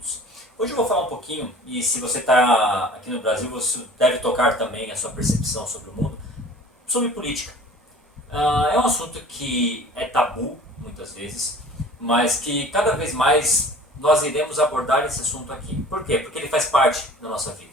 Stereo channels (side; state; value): both; normal; correlation 0.46